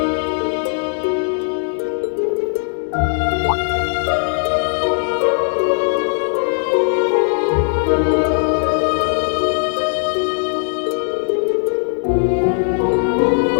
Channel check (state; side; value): silent; right; digital silence